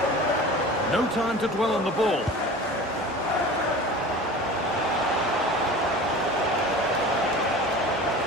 No time to dwell on the ball.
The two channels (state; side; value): normal; both; correlation 0.37